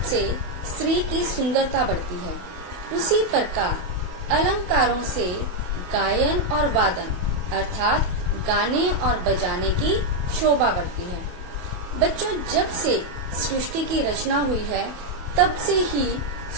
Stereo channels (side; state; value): left; late; 28 ms